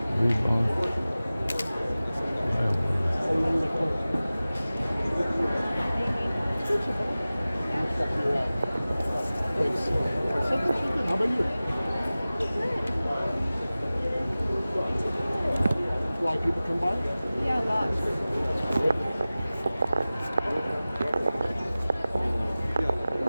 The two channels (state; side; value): inverted; both; correlation -0.97